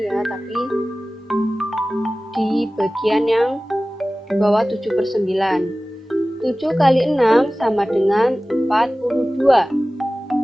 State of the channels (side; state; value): both; normal; correlation 0.97